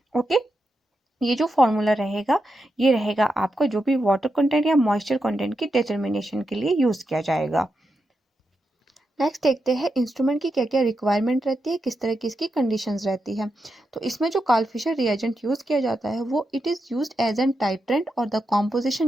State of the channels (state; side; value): normal; both; correlation 0.86